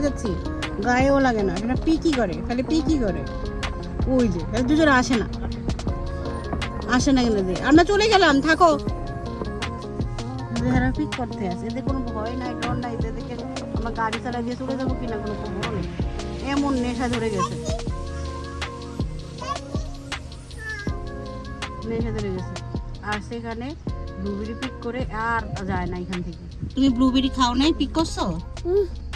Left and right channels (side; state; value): both; identical; correlation 1.00